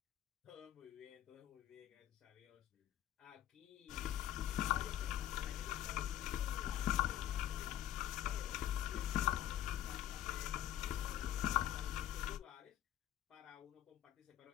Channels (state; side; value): quieter; right; 12.1 dB